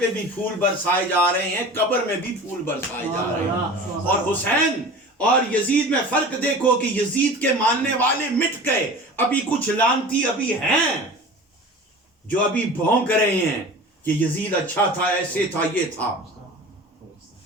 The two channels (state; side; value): normal; both; correlation 0.37